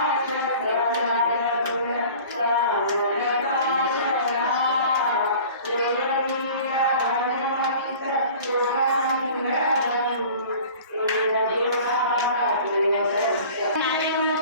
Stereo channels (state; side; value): inverted; both; correlation -0.44